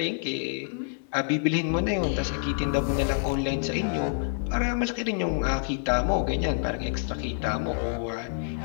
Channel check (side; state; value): right; silent; digital silence